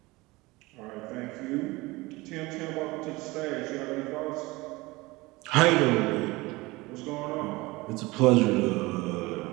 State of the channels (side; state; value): left; quieter; 21.9 dB